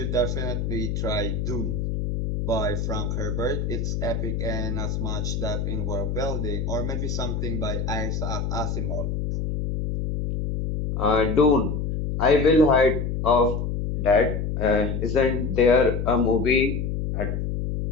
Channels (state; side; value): noise; left; hum, 2 dB below the sound